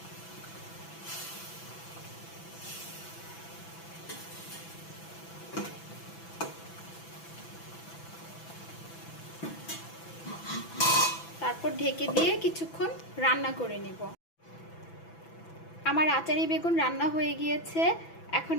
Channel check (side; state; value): right; late; 6.0 ms